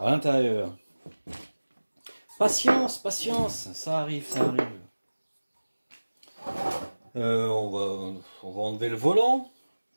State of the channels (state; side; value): inverted; both; correlation -1.00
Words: l'intérieur. Patience, patience, ça arrive, ça arrive. On va enlever le volant.